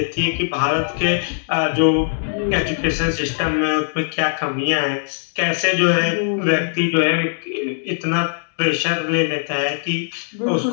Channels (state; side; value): silent; right; 62 dB below the other